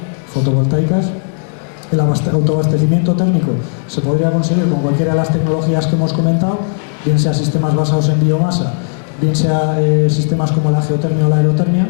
fotovoltaicas. El autoabastecimiento térmico se podría conseguir con cualquiera de las tecnologías que hemos comentado, bien sea sistemas basados en biomasa, bien sea sistemas como la geotermia o la aerotermia,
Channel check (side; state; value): right; silent; digital silence